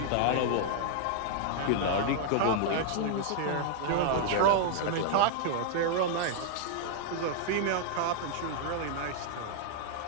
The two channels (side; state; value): both; different; correlation -0.01